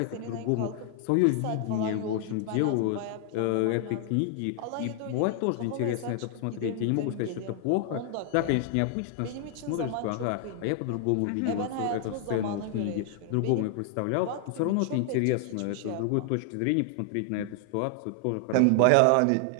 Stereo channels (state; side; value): different; both; correlation 0.00